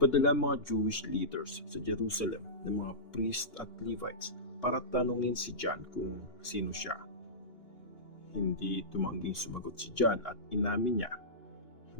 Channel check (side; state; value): right; late; 2.8 ms